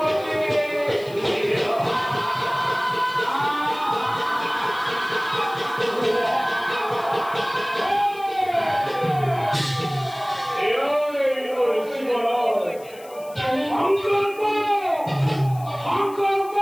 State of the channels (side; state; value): left; noise; hiss, 22 dB below the sound